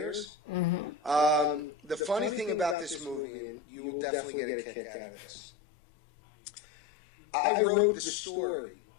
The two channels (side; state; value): right; drops out; at 3.2 s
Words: The funny thing about this movie, and you will definitely get a kick out of this, I wrote the story,